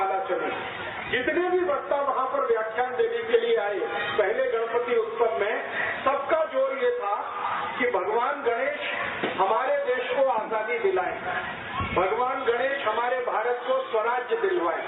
चली। जितने भी वक्ता वहाँ पर व्याख्यान देने के लिए आए पहले गणपति उत्सव में, सबका जोर ये था कि भगवान गणेश हमारे देश को आजादी दिलाए, भगवान गणेश हमारे भारत को स्वराज्य दिलवाए,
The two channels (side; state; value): both; identical; correlation 1.00